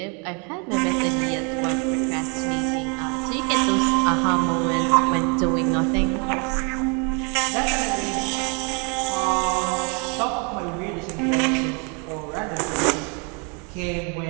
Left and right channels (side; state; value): left; quieter; 34.5 dB